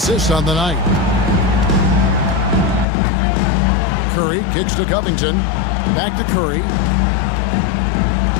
on the night. Curry kicks to Covington. Back to Curry.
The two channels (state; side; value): drops out; right; at 2.9 s